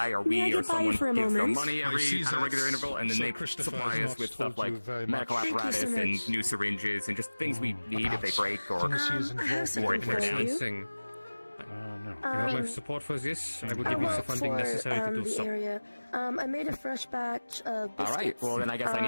or we or someone gives them money at a regular interval, and then they supply us with stuff like medical apparatus and new syringes and just things we need if they break or dancing. You have my support for this. I will give you the funding necessary to do so. Area. I made a fresh batch of biscuits. All right. Well, then I guess I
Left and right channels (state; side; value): inverted; both; correlation -1.00